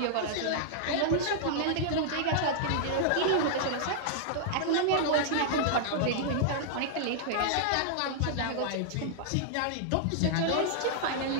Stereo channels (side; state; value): both; different; correlation -0.01